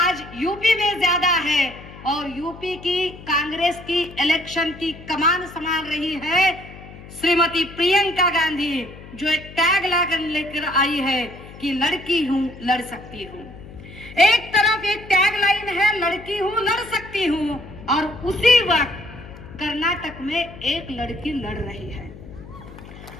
यूपी में ज्यादा है। और यूपी की कांग्रेस की इलेक्शन की कमान संभाल रही है श्रीमती प्रियंका गांधी, जो एक टैग लेकर आई है कि लड़की हूं, लड़ सकती हूं। एक तरफ एक टैग लाइन है, लड़की हूं, लड़ सकती हूं, और उसी वक्त कर्नाटक में एक लड़की लड़ रही है।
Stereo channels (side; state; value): left; noise; hum, 17 dB below the sound